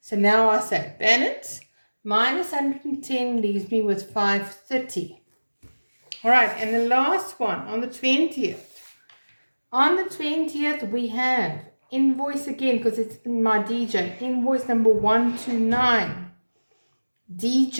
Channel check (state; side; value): inverted; both; correlation -1.00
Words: now I say balance minus 110 leaves me with 530. All right, and the last one on the 20th. On the 20th, we have invoice again because it's in my DJ. Invoice number 129,